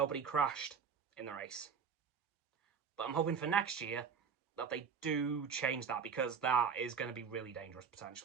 crashed in the race. But I'm hoping for next year that they do change that, because that is going to be really dangerous,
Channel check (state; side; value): quieter; left; 6.4 dB